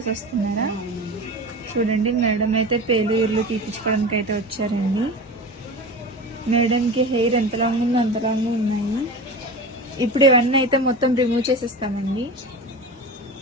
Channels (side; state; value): both; normal; correlation 0.30